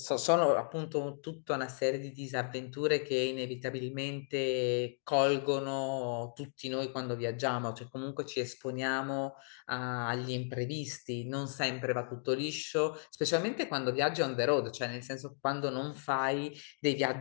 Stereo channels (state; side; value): silent; right; 55 dB below the other